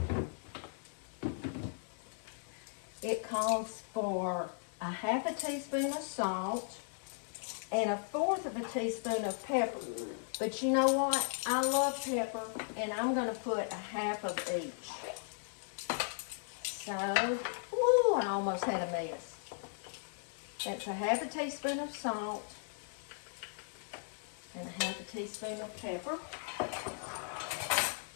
It calls for a 1/2 teaspoon of salt and 1/4 teaspoon of pepper. But you know what? I love pepper, and I'm going to put 1/2 of each. So, woo, I almost had a mess. That's 1/2 teaspoon of salt and 1/2 teaspoon of pepper.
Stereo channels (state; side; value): silent; right; digital silence